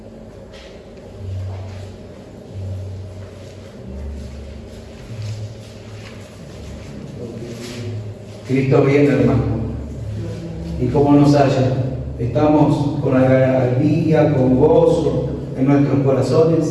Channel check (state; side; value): identical; both; correlation 1.00